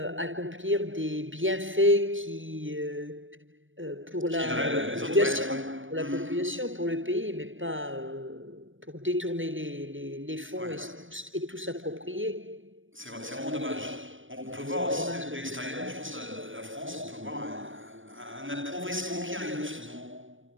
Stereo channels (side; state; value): left; late; 0.57 ms